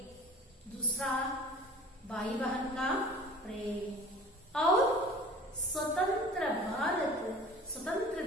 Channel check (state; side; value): normal; both; correlation 0.42